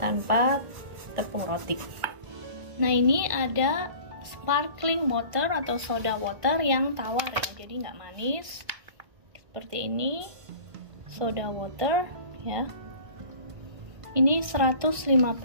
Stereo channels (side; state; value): left; late; 1.5 ms